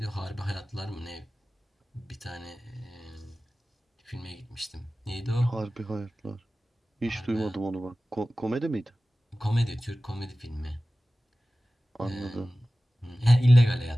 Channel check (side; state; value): both; normal; correlation 0.96